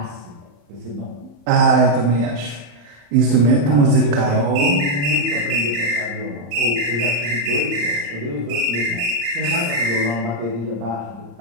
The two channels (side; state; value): left; late; 34 ms